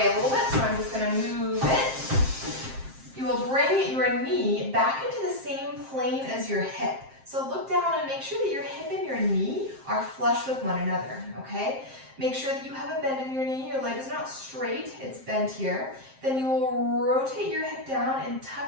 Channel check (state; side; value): late; left; 7.6 ms